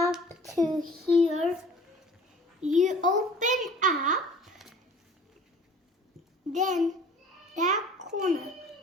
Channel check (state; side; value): normal; both; correlation 0.48